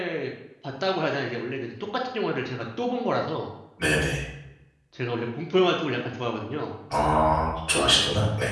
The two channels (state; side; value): identical; both; correlation 1.00